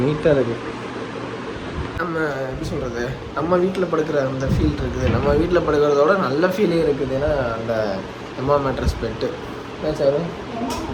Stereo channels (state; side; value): identical; both; correlation 1.00